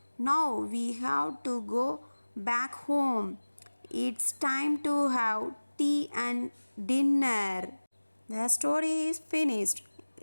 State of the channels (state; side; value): inverted; both; correlation -1.00